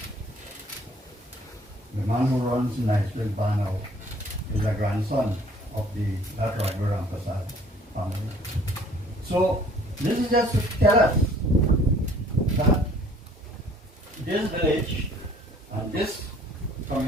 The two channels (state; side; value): normal; both; correlation 0.56